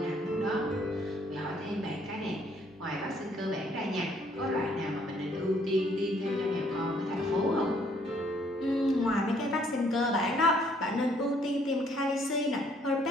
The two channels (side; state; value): both; normal; correlation 0.65